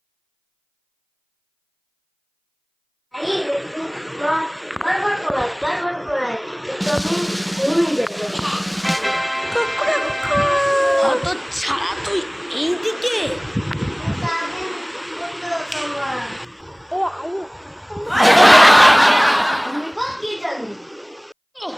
ছাড়া তুই এইদিকে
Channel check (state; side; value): identical; both; correlation 1.00